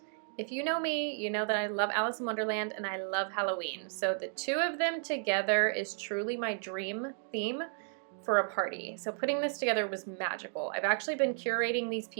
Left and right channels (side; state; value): left; silent; 56 dB below the other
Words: If you know me, you know that I love Alice in Wonderland and I love Halloween. So the two of them together is truly my dream theme for a party. So putting this together was magical. I've actually been curating these